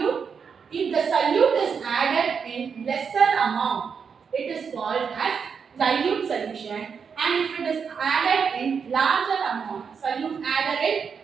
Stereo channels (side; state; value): left; quieter; 6.3 dB